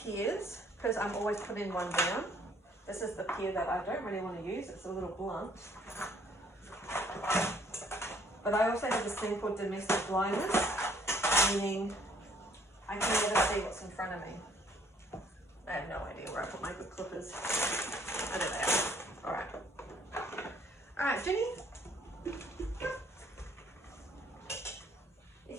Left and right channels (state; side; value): normal; both; correlation 0.62